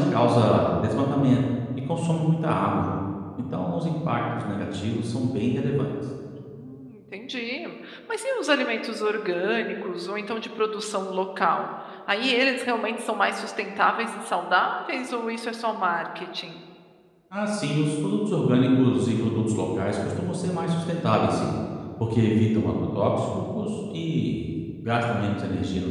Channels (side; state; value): both; identical; correlation 1.00